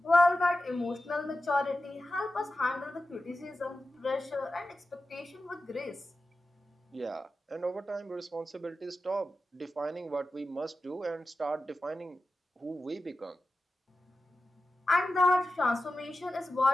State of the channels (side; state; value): both; normal; correlation 0.93